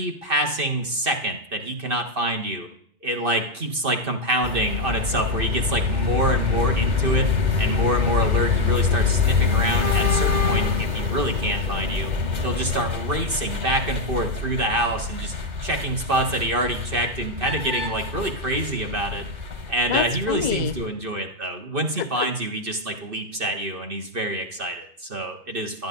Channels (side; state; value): left; late; 2.6 ms